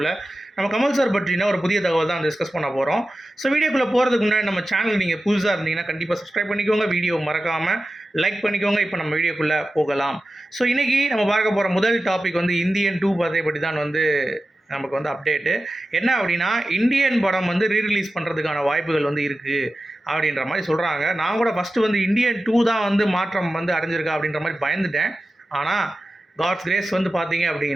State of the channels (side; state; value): both; normal; correlation 0.93